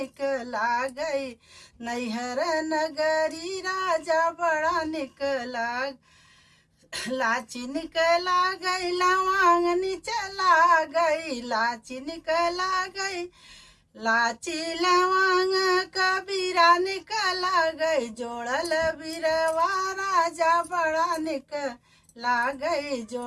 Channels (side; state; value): both; identical; correlation 1.00